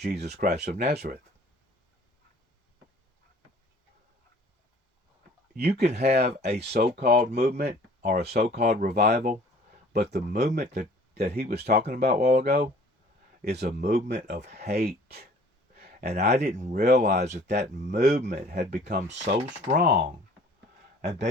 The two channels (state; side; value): normal; both; correlation 0.52